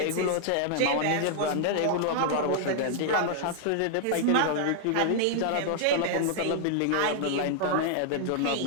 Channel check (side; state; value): both; different; correlation -0.01